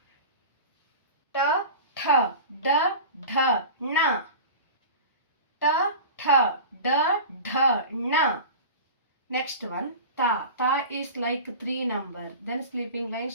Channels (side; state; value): both; inverted; correlation -0.33